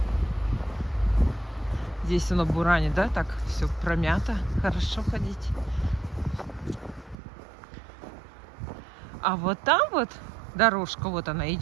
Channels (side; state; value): left; drops out; at 7.2 s